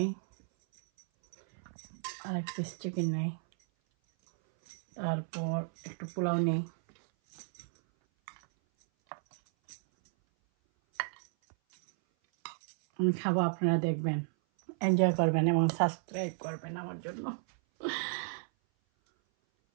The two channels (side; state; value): left; silent; 56 dB below the other